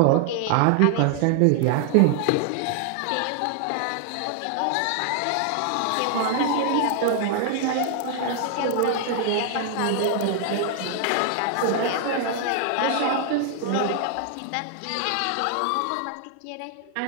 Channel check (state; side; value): different; both; correlation 0.00